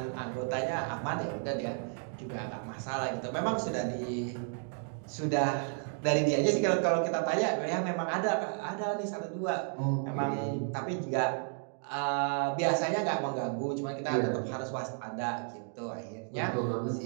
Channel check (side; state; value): left; silent; 56 dB below the other